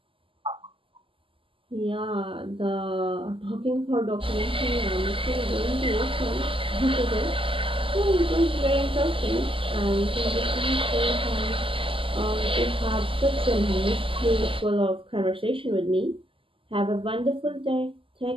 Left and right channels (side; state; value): left; late; 0.25 ms